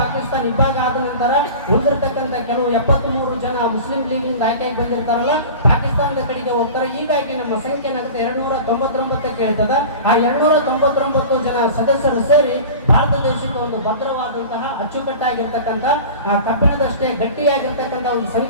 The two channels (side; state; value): both; inverted; correlation -0.36